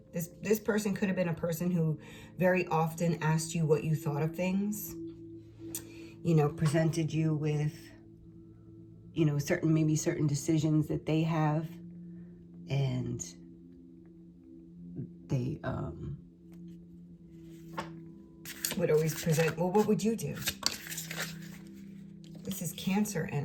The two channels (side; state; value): both; identical; correlation 1.00